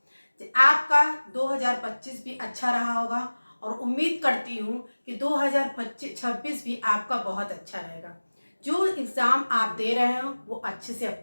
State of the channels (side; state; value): both; inverted; correlation -1.00